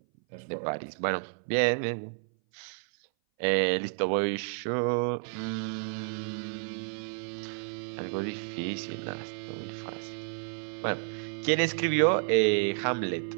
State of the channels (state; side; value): silent; left; 57 dB below the other